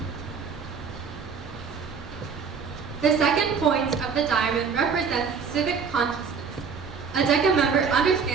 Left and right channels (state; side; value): quieter; left; 5.9 dB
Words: The second point of the diamond represents civic consciousness. A DECA member